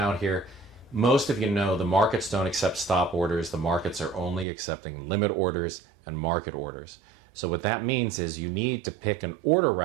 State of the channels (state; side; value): drops out; left; at 4.5 s